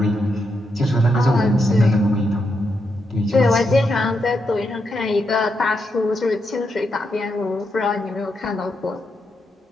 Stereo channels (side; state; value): both; normal; correlation 0.82